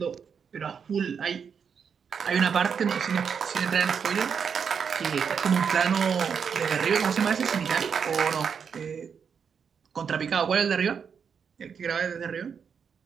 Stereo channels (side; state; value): left; quieter; 6.7 dB